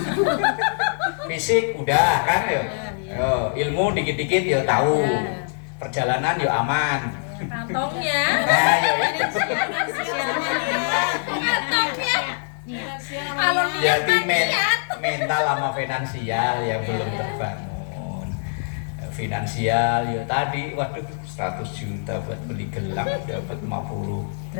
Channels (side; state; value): right; silent; 63 dB below the other